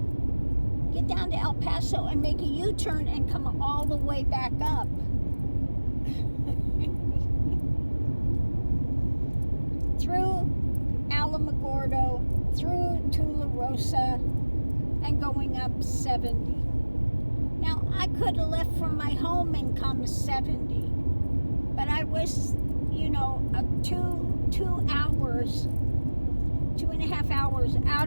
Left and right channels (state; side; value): inverted; both; correlation -1.00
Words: get down to El Paso and make a U-turn and come all the way back up. Through Alamogordo, through Tularosa, and going up 70. Now, I could have left from my home and come 70, but I was, 2.5 hours